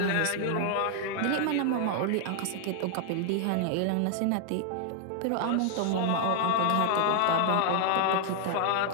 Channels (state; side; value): different; both; correlation 0.00